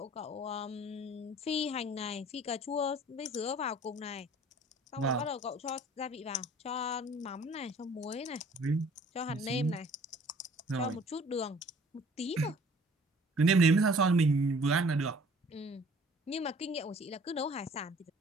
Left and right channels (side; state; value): both; normal; correlation 0.53